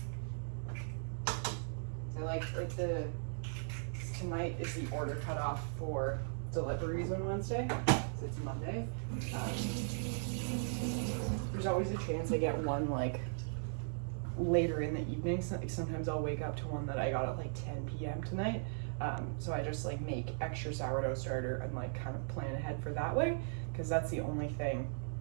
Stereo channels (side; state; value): left; silent; 53 dB below the other